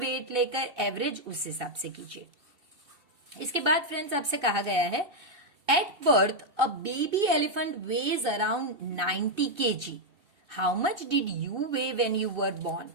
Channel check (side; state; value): left; late; 2.7 ms